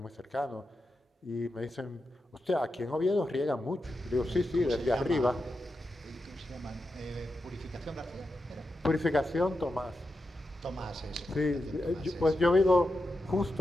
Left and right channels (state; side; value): normal; both; correlation 0.88